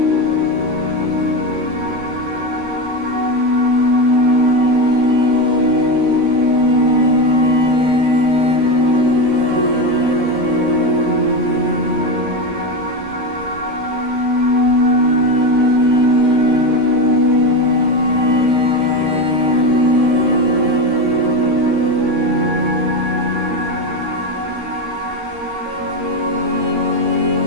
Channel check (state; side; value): late; left; 13 ms